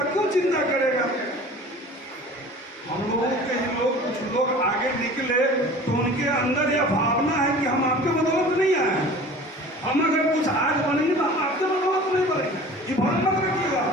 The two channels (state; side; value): normal; both; correlation 0.42